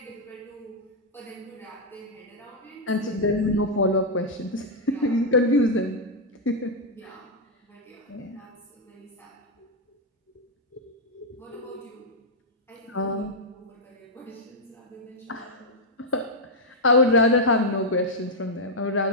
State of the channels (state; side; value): normal; both; correlation -0.03